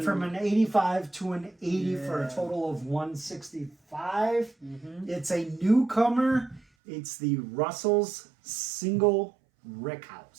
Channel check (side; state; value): left; drops out; at 6.7 s